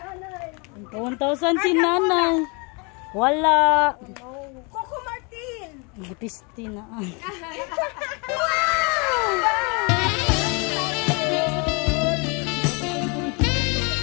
1,000 si nanay. Wala. Coco Martin. Butisti na.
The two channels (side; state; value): right; quieter; 31.8 dB